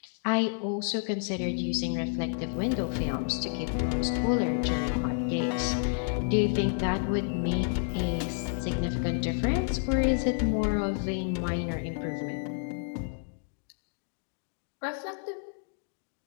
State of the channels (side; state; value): right; silent; digital silence